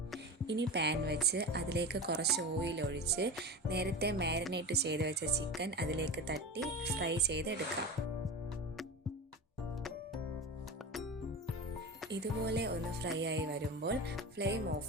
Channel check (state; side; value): normal; both; correlation 0.26